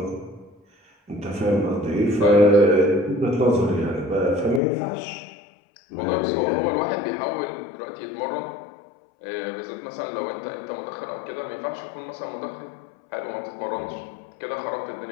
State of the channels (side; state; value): right; drops out; at 4.6 s